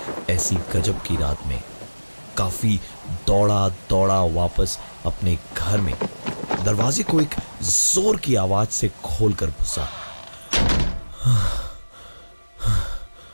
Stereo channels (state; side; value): inverted; both; correlation -1.00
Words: ऐसी गजब की रात में काफी दौड़ा दौड़ा वापस अपने घर में दरवाजे को एक जोर की आवाज से खोलकर घुसा।